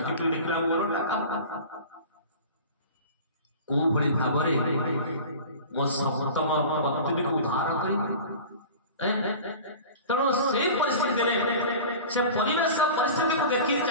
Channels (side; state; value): both; inverted; correlation -0.37